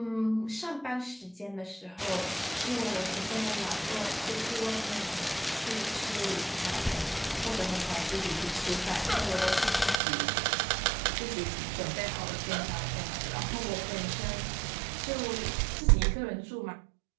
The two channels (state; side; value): drops out; left; at 10.0 s